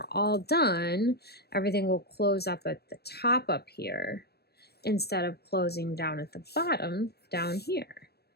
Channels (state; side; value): late; right; 0.47 ms